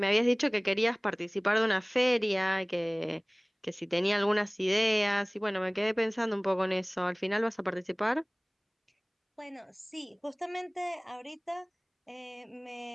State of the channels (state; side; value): identical; both; correlation 1.00